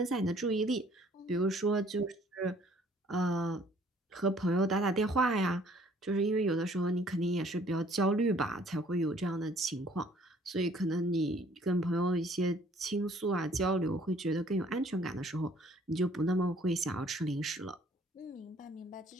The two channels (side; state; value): both; normal; correlation 0.59